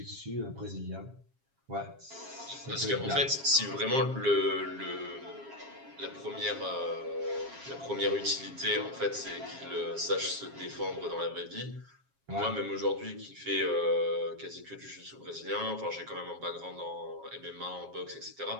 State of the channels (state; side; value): late; left; 7.4 ms